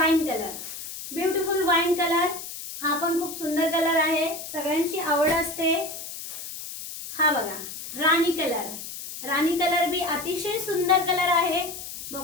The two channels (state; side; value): noise; left; hiss, 10 dB below the sound